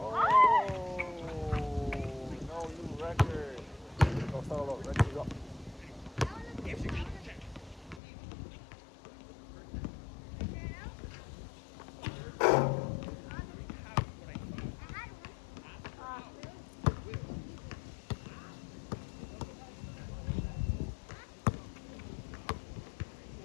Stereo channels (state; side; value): drops out; right; at 8.0 s